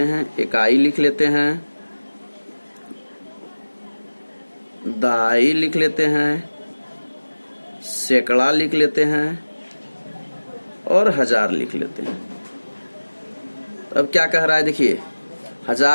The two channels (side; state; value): both; inverted; correlation -1.00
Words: हैं, इकाई लिख लेते हैं, दाई लिख लेते हैं, सैकड़ा लिख लेते हैं और हजार लिख लेते हैं। अब क्या कह रहा है, देखिए